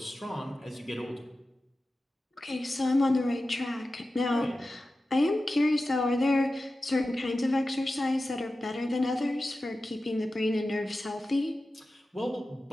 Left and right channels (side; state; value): both; normal; correlation 0.94